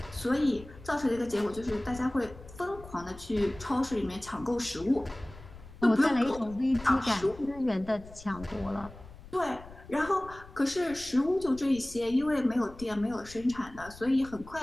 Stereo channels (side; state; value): left; noise; rumble, 18 dB below the sound